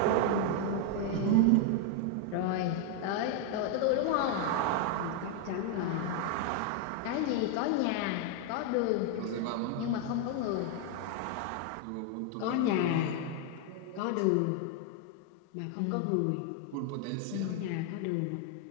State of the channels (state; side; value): different; both; correlation 0.00